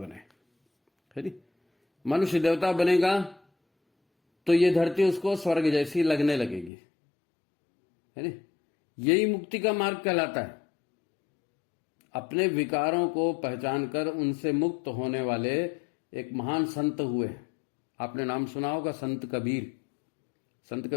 है नी? मनुष्य देवता बनेगा तो ये धरती उसको स्वर्ग जैसी लगने लगेगी, है नी? यही मुक्ति का मार्ग कहलाता है। अपने विकारों को पहचान कर उनसे मुक्त होने वाले एक महान संत हुए। आपने नाम सुना होगा संत कबीर। संत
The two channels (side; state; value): right; drops out; at 6.7 s